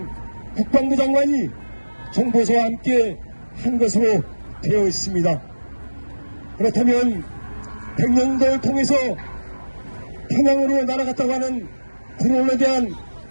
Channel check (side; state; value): both; inverted; correlation -1.00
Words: 국방부 장관이 정보서와 함께 한 것으로 되어 있습니다. 그렇다면 백령도를 통해서 평양으로 날아갔다고 하는 드론에 대한